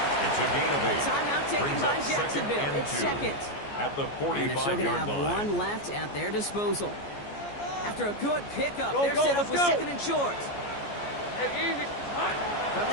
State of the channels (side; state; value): right; late; 14 ms